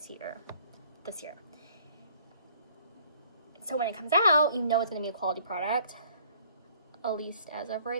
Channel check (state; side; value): inverted; both; correlation -0.58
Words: year. So when it comes out, you know it's going to be a quality product. At least as of